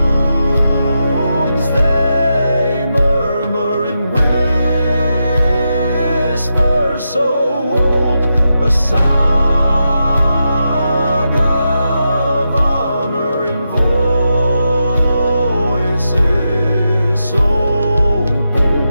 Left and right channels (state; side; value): inverted; both; correlation -0.87